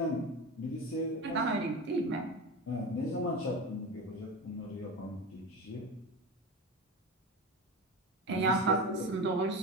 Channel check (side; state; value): both; normal; correlation 0.25